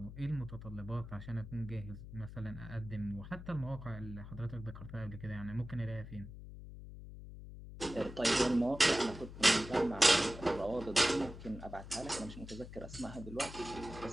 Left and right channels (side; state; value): left; noise; hum, 12 dB below the sound